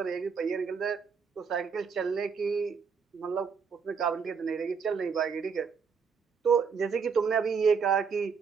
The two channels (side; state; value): left; quieter; 5.9 dB